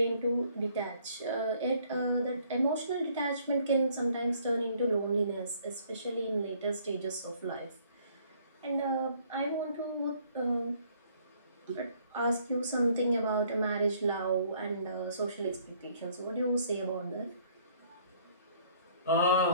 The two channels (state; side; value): inverted; both; correlation -0.62